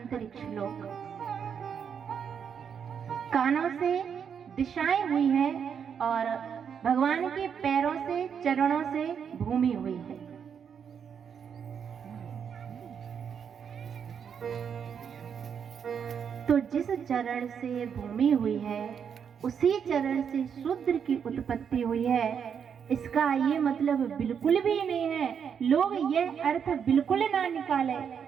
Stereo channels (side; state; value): left; quieter; 7.4 dB